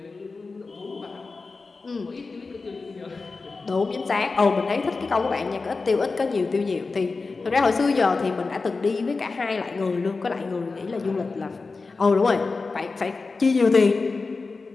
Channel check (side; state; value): right; quieter; 4.1 dB